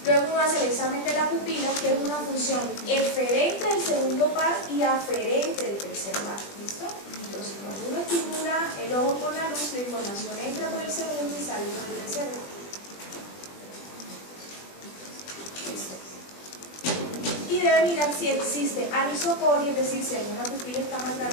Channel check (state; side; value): late; right; 20 ms